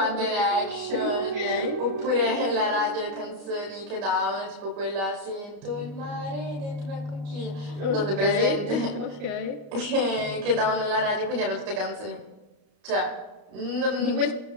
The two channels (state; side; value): late; left; 34 ms